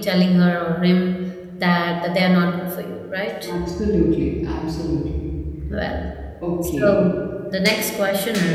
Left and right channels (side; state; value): both; identical; correlation 1.00